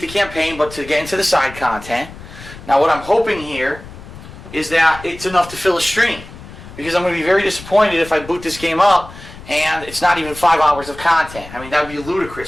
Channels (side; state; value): left; noise; rumble, 16 dB below the sound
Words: the campaign, but to get into the side content. Now what I'm hoping here is that it's enough to fill a stream. Because I'm going to be very disappointed if I boot this game up and it's not even 5 hours of content. I mean, that would be